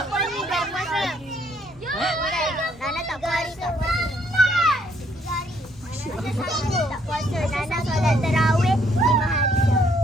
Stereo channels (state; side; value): normal; both; correlation 0.68